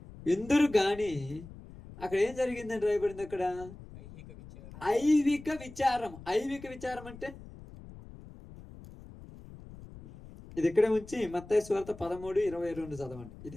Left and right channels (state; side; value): noise; left; rumble, 17 dB below the sound